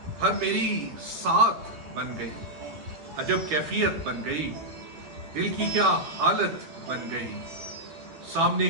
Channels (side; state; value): left; late; 12 ms